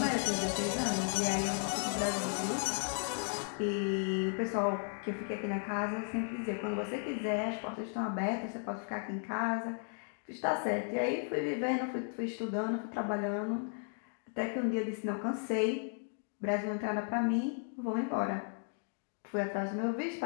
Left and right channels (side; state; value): right; silent; 54 dB below the other